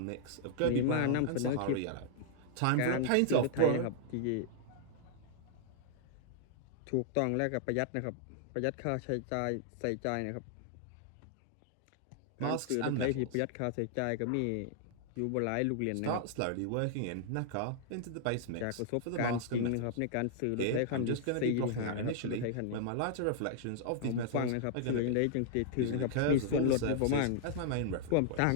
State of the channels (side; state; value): both; different; correlation -0.01